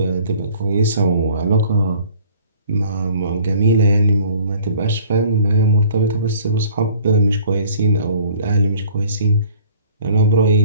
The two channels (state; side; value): inverted; both; correlation -0.52